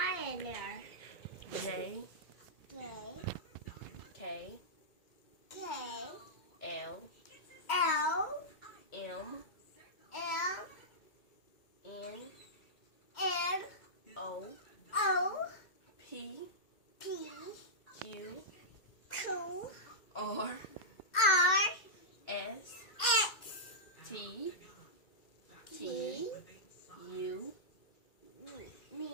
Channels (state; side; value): late; right; 2.1 ms